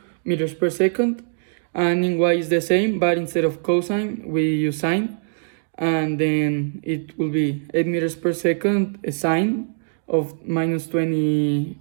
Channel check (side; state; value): left; silent; digital silence